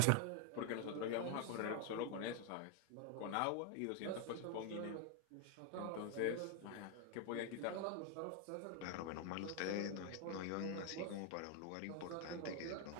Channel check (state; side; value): different; both; correlation 0.00